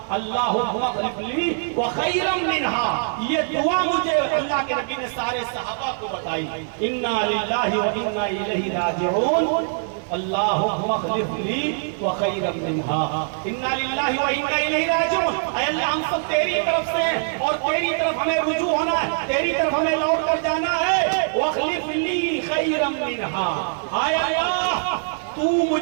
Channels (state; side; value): silent; left; 64 dB below the other